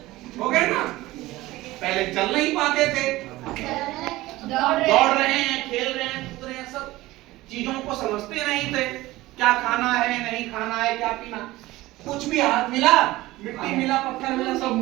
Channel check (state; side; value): quieter; left; 18.2 dB